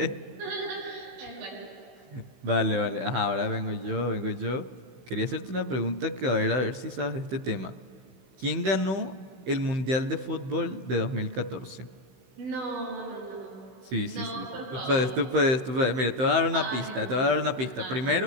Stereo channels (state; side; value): late; left; 16 ms